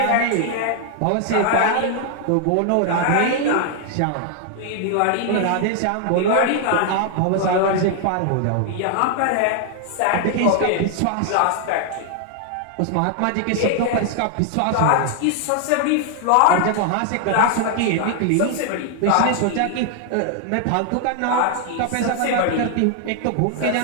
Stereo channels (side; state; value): both; different; correlation 0.00